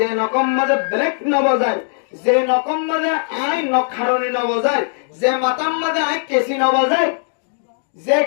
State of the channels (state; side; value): silent; right; digital silence